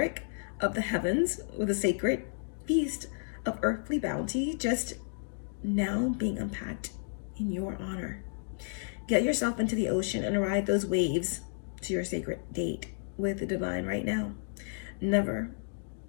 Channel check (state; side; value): silent; right; digital silence